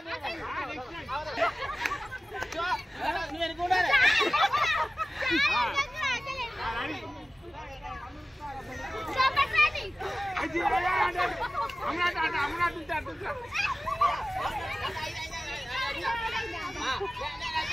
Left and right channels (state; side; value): normal; both; correlation 0.97